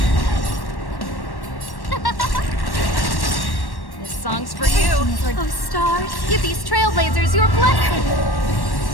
This song's for you. Oh, stars, give these trailblazers your blessing.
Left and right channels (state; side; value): late; right; 1.1 ms